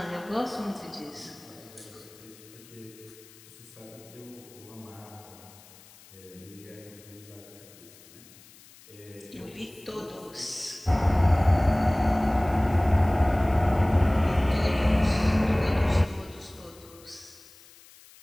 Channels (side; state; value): left; noise; hiss, 23 dB below the sound